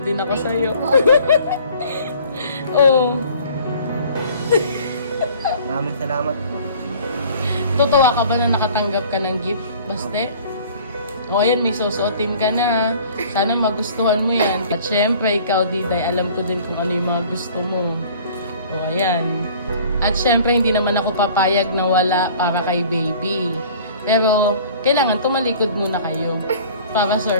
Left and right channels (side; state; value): both; inverted; correlation -0.49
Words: din ako sa'yo. Oh. Maraming salamat po. Tutuwa ka ba na nakatanggap ka ng gift? Baste? O ayan, may susuotin ka na. Sana magustuhan mo yan. At syempre, ikaw, Diday, alam ko din kung ano yung mga gusto mo. O ayan. At syempre, hindi naman ako papayag na wala para kay baby. Pero, kailangan tumalikod muna kayo. Para